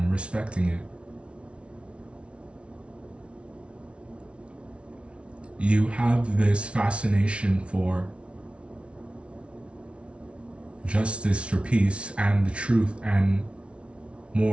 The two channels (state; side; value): late; left; 0.060 ms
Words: respecting it. You have this fascination for justice, for peace, and the truth, and